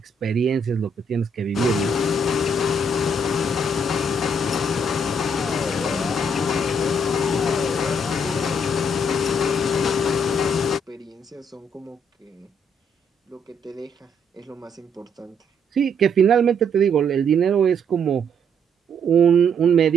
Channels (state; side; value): normal; both; correlation 0.70